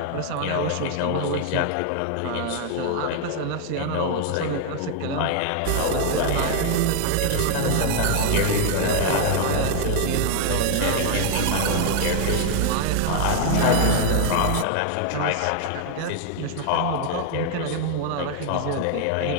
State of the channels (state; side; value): different; both; correlation 0.00